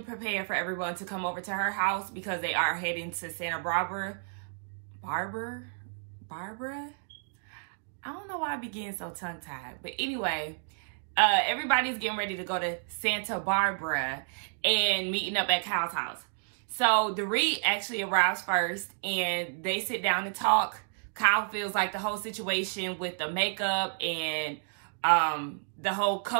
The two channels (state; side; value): silent; left; digital silence